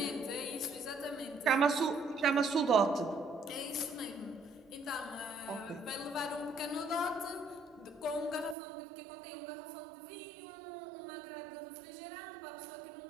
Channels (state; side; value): drops out; left; at 8.6 s